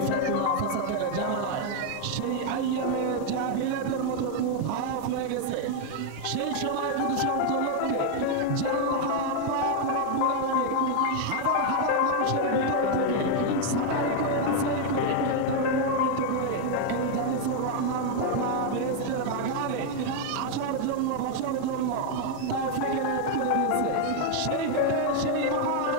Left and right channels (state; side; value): different; both; correlation 0.00